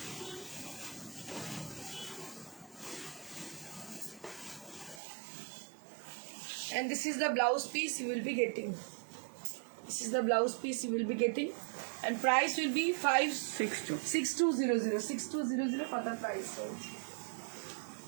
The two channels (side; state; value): left; drops out; at 5.0 s